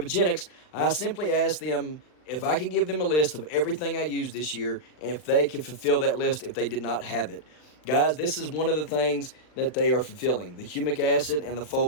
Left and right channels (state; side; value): late; right; 40 ms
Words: I simply asked them if I could give them a list of everything I used this year, and if they could fulfill that list if they did not have it. Guys, this is one of the things that they are fulfilling, the humic acid and the